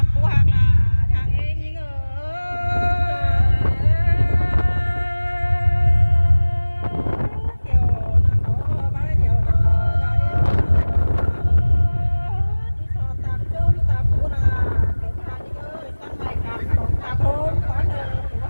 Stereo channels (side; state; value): both; inverted; correlation -1.00